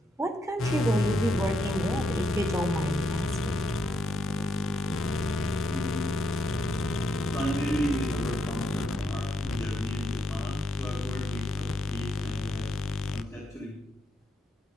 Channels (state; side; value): normal; both; correlation 0.78